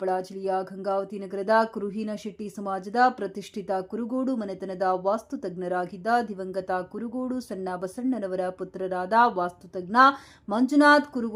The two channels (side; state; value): both; identical; correlation 1.00